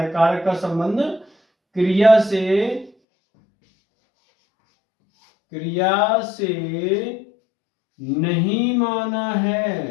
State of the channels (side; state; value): right; drops out; at 2.9 s